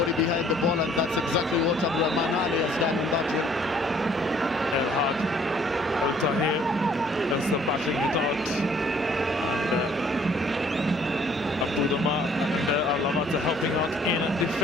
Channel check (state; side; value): normal; both; correlation 0.60